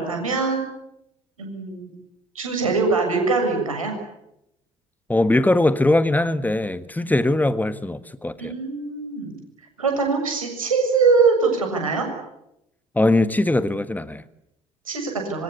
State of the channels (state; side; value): normal; both; correlation 0.58